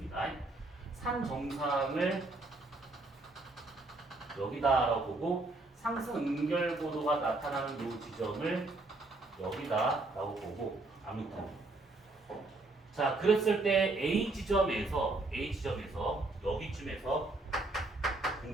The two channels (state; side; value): quieter; left; 3.1 dB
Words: 산 정상을 여기다라고 보고 상승 응결고도가 나타나는 이 지점을 여기다라고 보고 아무튼 자, 그랬을 때 A 지점에서 여기쯤에서